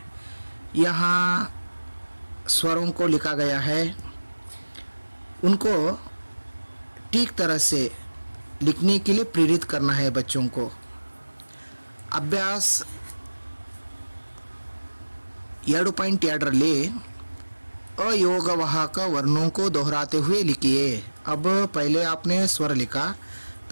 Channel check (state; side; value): inverted; both; correlation -1.00